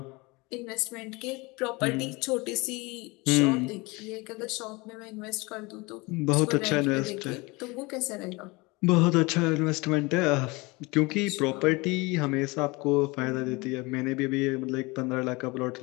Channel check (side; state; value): right; quieter; 24.9 dB